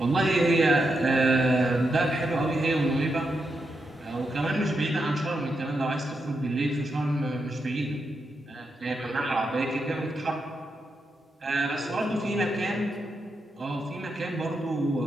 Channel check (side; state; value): both; normal; correlation 0.84